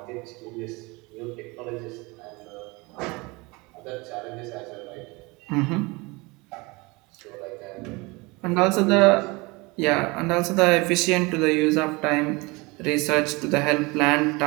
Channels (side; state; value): left; quieter; 25.2 dB